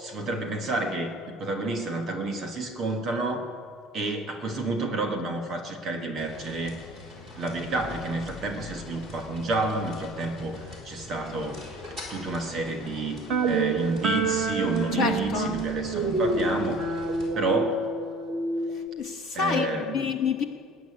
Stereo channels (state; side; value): normal; both; correlation 0.48